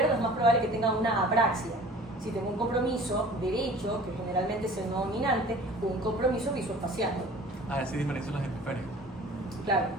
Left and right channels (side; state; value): both; normal; correlation 0.46